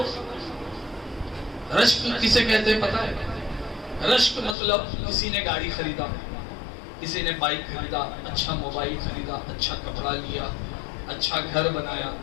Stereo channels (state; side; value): drops out; right; at 4.5 s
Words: رشک کسے کہتے ہیں پتہ ہے؟ رشک مطلب کسی نے گاڑی خریدا، کسی نے بائک خریدا، اچھا موبائل خریدا، اچھا کپڑا لیا، اچھا گھر بنایا،